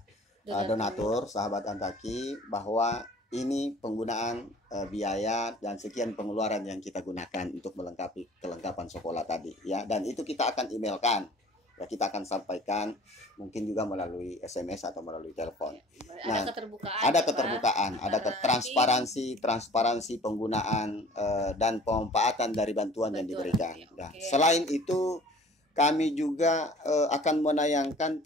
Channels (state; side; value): normal; both; correlation 0.48